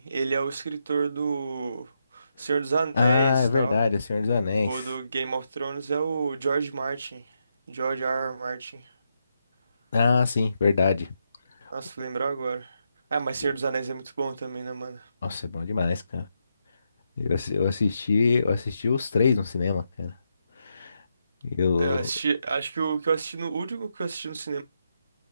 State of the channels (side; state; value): both; inverted; correlation -0.82